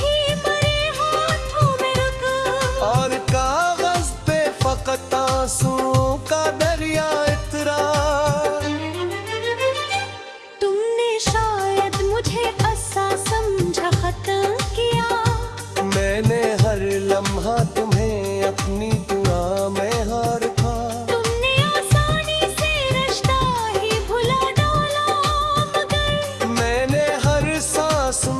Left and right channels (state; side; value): identical; both; correlation 1.00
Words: मरे हाथों में रुक, और कागज पे फकत आंसुओं का दरिया इतरा। तुमने शायद मुझे ऐसा समझा खत्म किया, मैंने हर लम्हा तुम्हें अपनी दुआ में हार था। तुमने आसानी से रिश्ता ही भुला डाला मगर मैंने हर सांस